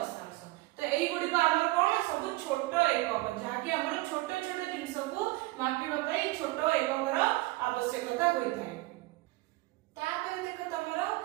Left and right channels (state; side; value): quieter; left; 20.6 dB